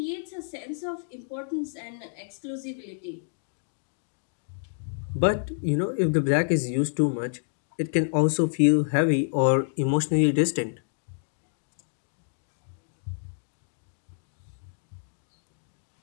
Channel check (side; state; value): right; silent; digital silence